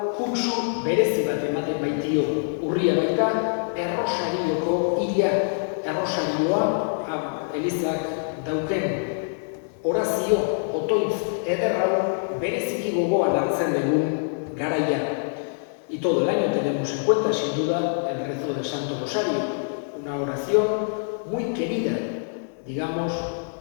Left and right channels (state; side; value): silent; right; digital silence